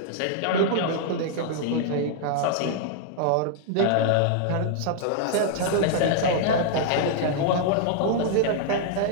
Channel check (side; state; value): both; different; correlation -0.01